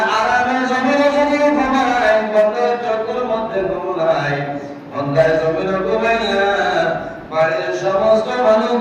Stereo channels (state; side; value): identical; both; correlation 1.00